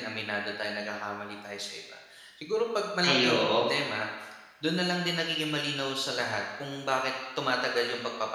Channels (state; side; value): identical; both; correlation 1.00